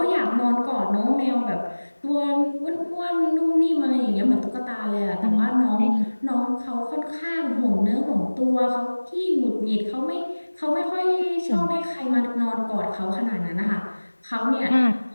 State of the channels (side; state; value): both; inverted; correlation -1.00